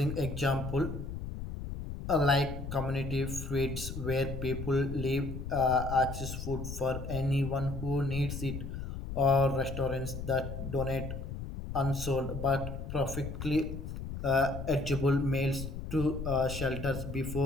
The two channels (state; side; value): noise; left; rumble, 7 dB below the sound